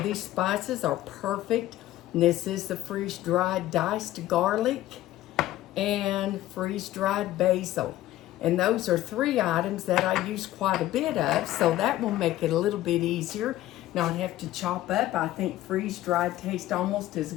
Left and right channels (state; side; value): quieter; right; 14.8 dB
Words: spices are perfect. And this is the freeze-dried diced garlic and freeze-dried basil. And those are three items that I use quite a bit of, so that will make it a little bit easier. Not have to chop up. I think freeze-dried tastes almost as